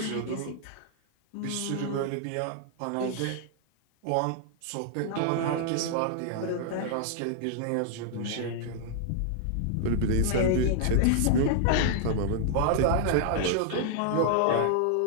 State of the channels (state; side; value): different; both; correlation 0.00